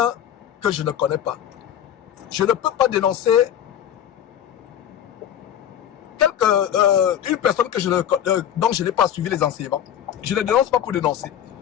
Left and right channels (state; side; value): quieter; right; 10.2 dB